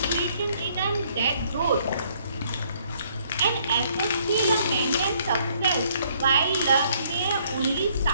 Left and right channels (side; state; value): both; inverted; correlation -0.66